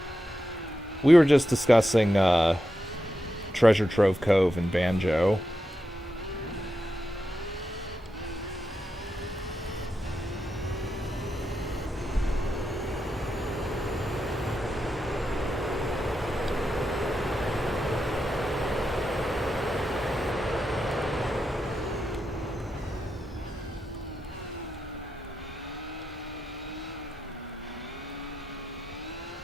We were just discussing Treasure Trove Cove and Banjo.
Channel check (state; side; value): normal; both; correlation 0.87